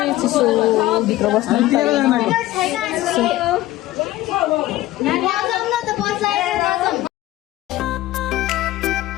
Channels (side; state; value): right; quieter; 16.1 dB